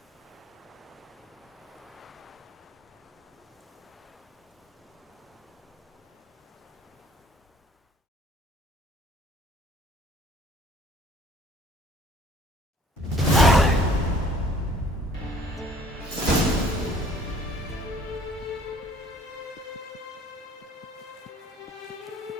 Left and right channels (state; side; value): normal; both; correlation 0.56